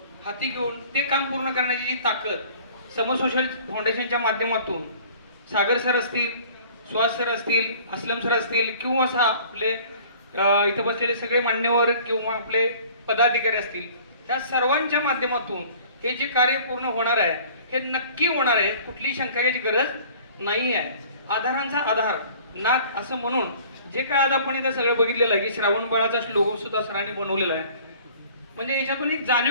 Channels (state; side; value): inverted; both; correlation -0.49